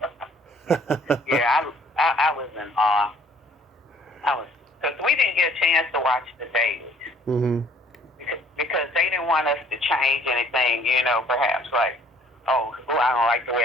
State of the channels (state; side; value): normal; both; correlation 0.58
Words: Yeah, I was in awe. Because we didn't get a chance to watch the dailies. Mm-hmm. Because they didn't want us to change anything, you know, perhaps like, oh, I don't like the way